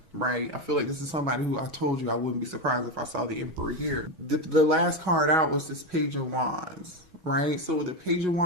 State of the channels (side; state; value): left; late; 6.2 ms